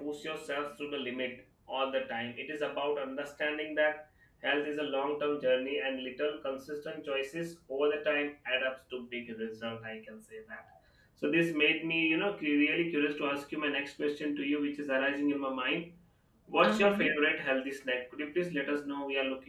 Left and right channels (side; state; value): both; identical; correlation 1.00